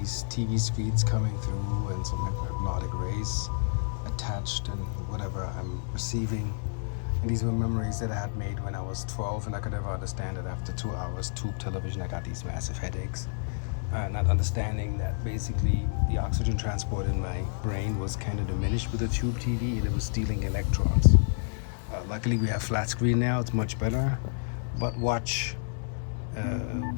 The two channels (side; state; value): right; silent; digital silence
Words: TV screens coming through and some hypnotic rays attached and whatever I'm receiving. And these were memories that I had made when I was 12, and I could never understand it. After 2 hours tube television, I got these massive headaches. Not understanding that basically the oxygen transport in my brain was kind of diminished with the tube TV and it was stealing electrons. Luckily we have flat screen now, it's much better, but watch